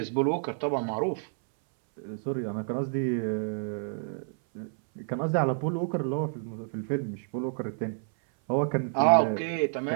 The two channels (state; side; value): silent; left; 58 dB below the other